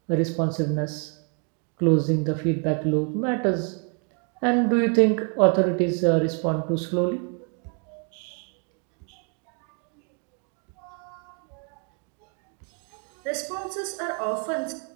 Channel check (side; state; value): left; quieter; 38.3 dB